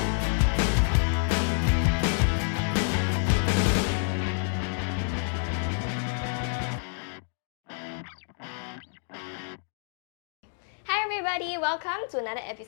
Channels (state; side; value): silent; right; digital silence